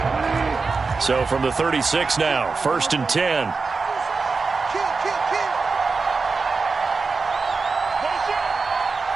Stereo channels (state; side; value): quieter; left; 4.4 dB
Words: So from the 36 now, 1st and 10.